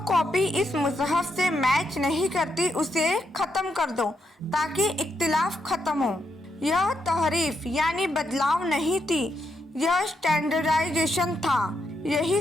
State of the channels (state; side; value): normal; both; correlation 0.80